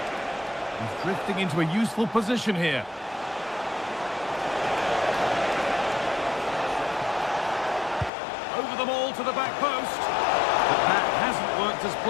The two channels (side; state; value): right; drops out; at 8.1 s